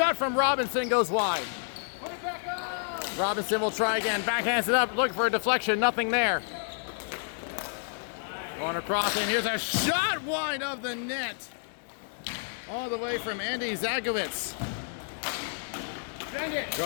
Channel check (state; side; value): silent; right; digital silence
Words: from Robinson goes wide. Robinson will try again. Backhands it up. Looking for a deflection. Nothing there. Going across, and here's a shot wide of the net. All the way from Andy Zagowitz.